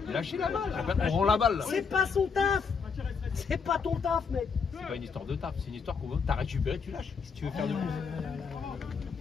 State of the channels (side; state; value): right; quieter; 5.6 dB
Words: Lâchez la balle. On rend la balle. Là. C'est pas son taf. C'est pas ton taf, mec. C'est pas une histoire de taf, c'est une histoire qu'on veut. T'as récupéré, tu lâches. Si tu veux faire de plus.